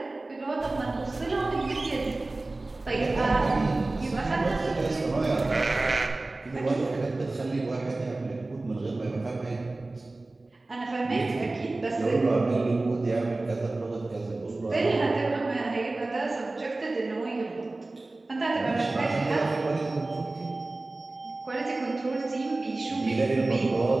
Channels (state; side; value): quieter; left; 3.1 dB